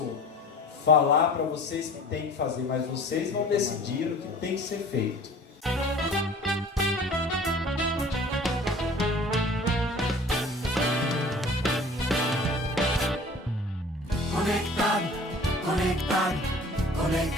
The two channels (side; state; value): both; normal; correlation 0.45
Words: falar para vocês que tem que fazer, mas vocês vão decidir o que tem que ser feito. Conectado, conectado,